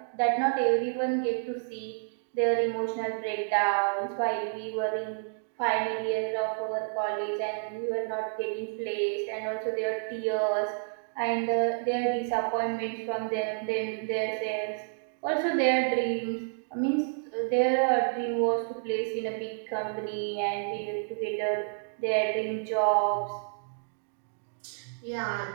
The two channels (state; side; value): silent; left; digital silence